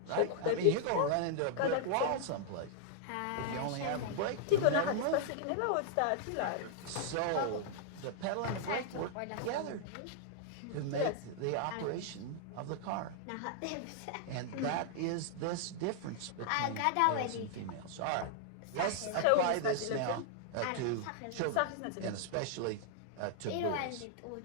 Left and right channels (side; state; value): both; different; correlation -0.01